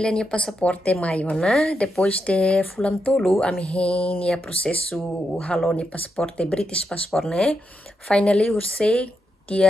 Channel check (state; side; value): normal; both; correlation 0.84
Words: niya pasaporte mayo na. Depois de fulam tolu, amihin niya prosesu halo ni pasaporte British passport ne. Finally, hursay